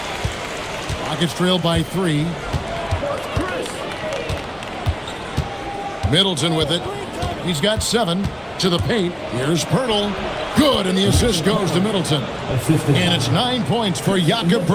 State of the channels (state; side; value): identical; both; correlation 1.00